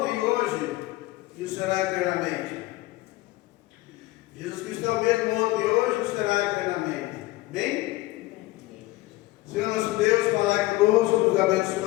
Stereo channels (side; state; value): right; quieter; 19.0 dB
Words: e hoje, e o será eternamente. Jesus Cristo é o mesmo ontem e hoje, e o será eternamente. Bem? Senhor nosso Deus, falai conosco, nos